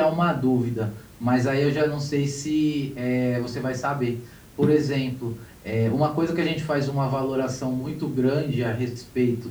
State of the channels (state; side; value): identical; both; correlation 1.00